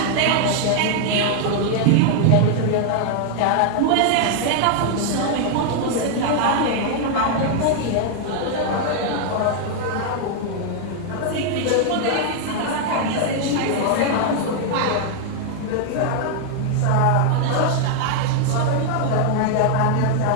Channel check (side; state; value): both; different; correlation 0.00